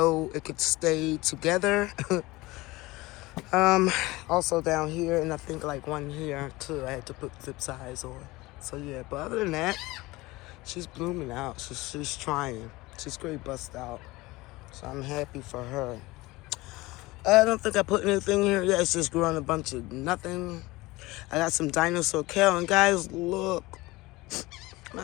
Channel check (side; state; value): right; quieter; 20.8 dB